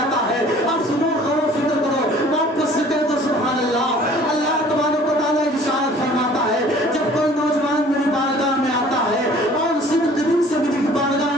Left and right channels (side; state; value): both; normal; correlation 0.52